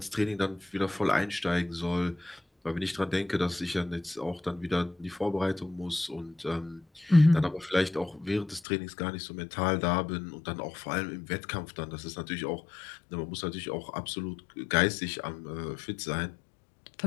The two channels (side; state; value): right; drops out; at 8.6 s